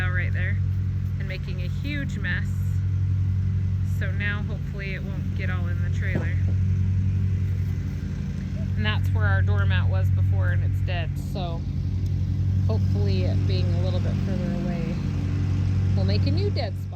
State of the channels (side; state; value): both; identical; correlation 1.00